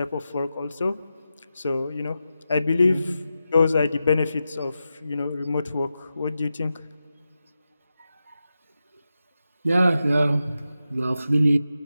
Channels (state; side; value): inverted; both; correlation -0.90